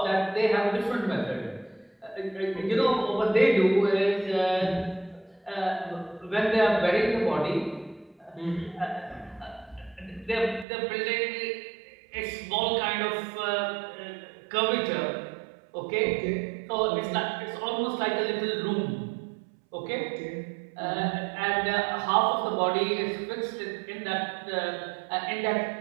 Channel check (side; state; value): left; drops out; at 10.7 s